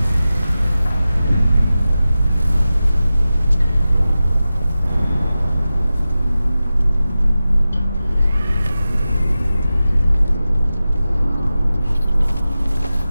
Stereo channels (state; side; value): inverted; both; correlation -0.95